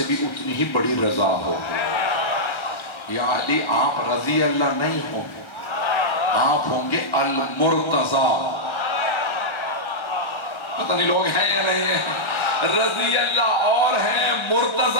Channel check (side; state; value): right; late; 1.3 ms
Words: بھی اتنی ہی بڑی رضا ہو۔ یا علی آپ رضی اللہ نہیں ہوں گے، آپ ہوں گے المرتضی، پتہ نہیں لوگ ہیں یا نہیں ہیں، رضی اللہ اور ہیں،